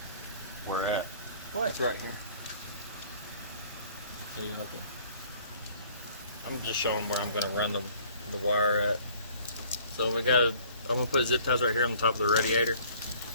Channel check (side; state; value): both; inverted; correlation -0.55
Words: where at? What? It's right here. So you have to. I'm just showing where I'm going to run the wire at. So we got. I'm going to put zip ties right here on the top of the radiator,